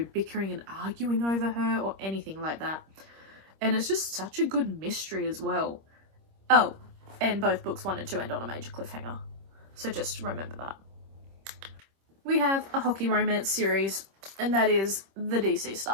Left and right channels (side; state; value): left; late; 26 ms